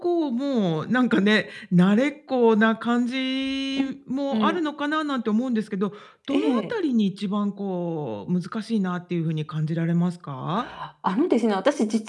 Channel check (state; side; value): identical; both; correlation 1.00